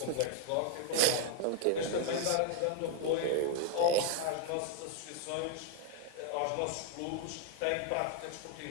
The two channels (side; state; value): both; different; correlation 0.00